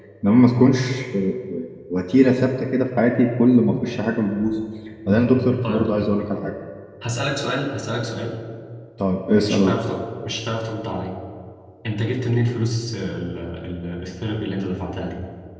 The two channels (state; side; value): identical; both; correlation 1.00